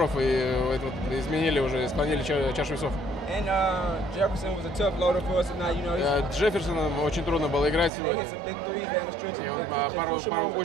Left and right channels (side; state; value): left; drops out; at 7.9 s